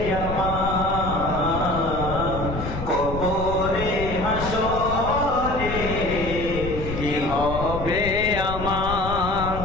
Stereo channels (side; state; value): left; noise; rumble, 7 dB below the sound